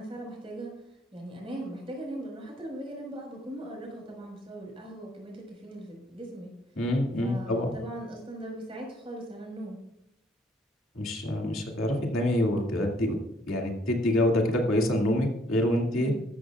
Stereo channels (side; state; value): both; normal; correlation 0.65